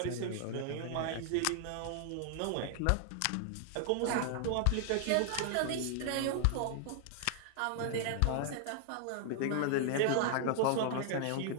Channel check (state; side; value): different; both; correlation 0.00